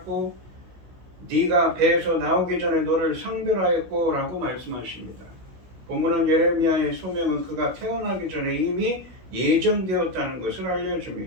네가 배에서 나오기 전에 너를 성별하였고 라고 말씀하십니다. 본문은 예레미야의 소명은 그가 태어나기 전에 이미 예정되었다는 것을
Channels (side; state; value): left; late; 16 ms